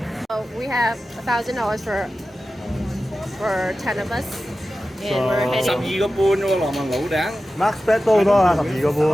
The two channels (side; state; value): both; normal; correlation 0.94